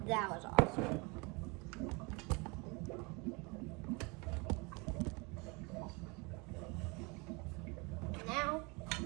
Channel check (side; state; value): left; quieter; 28.5 dB